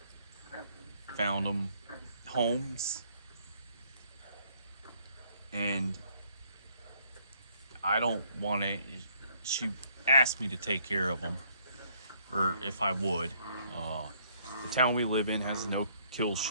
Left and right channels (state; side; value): inverted; both; correlation -0.66